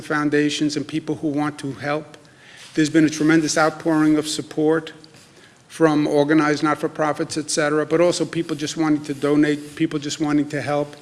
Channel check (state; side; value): identical; both; correlation 1.00